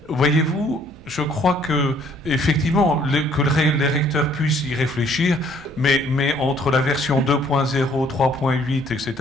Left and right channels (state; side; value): noise; right; hum, 23 dB below the sound